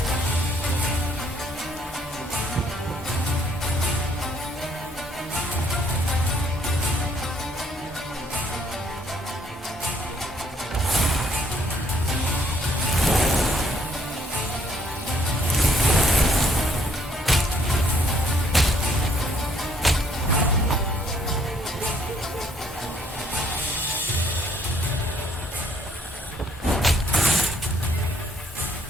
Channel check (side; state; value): both; normal; correlation 0.66